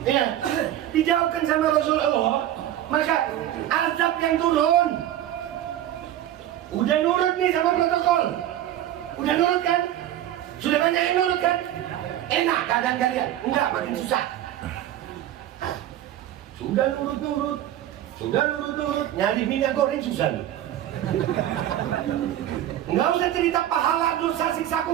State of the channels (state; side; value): quieter; left; 12.4 dB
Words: ya, dijauhkan sama Rasulullah, maka azab yang turun. Udah nurut nih sama protokol, udah nurut kan? Sudah banyak yang nurut kan? Enak keadaan kalian? Enggak, makin susah. Sudah nurut-nurut, nyari minyak goreng susah loh. Nggak usah cerita pahala, dosa, siksa